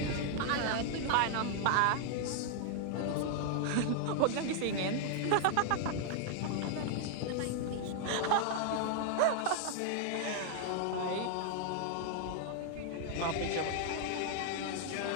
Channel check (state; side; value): different; both; correlation 0.00